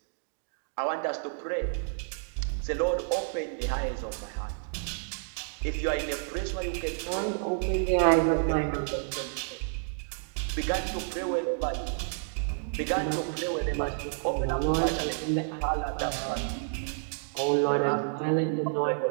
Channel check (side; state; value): left; silent; digital silence